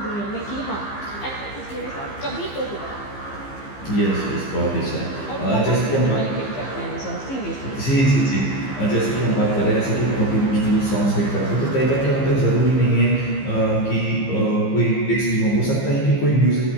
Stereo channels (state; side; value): late; right; 15 ms